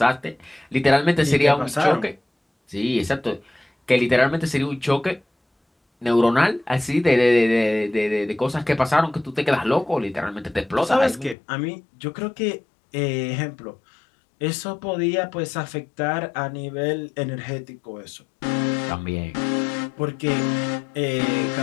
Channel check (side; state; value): right; drops out; at 11.4 s